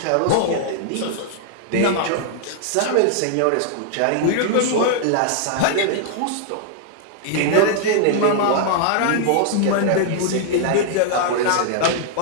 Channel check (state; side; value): different; both; correlation -0.01